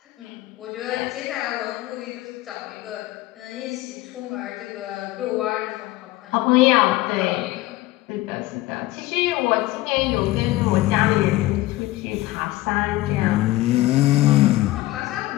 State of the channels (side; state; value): right; quieter; 18.1 dB